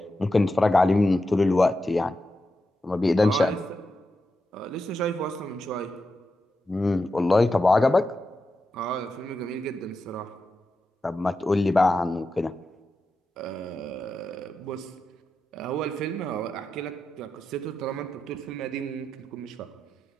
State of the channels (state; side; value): normal; both; correlation 0.89